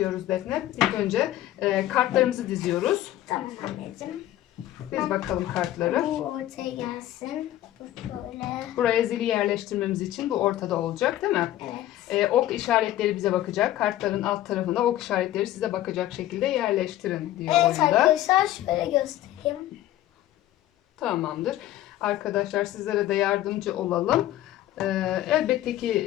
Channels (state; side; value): quieter; right; 14.0 dB